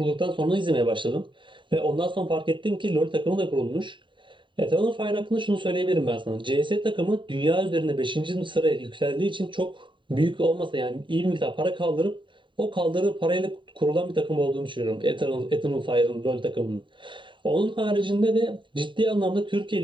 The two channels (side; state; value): left; late; 0.23 ms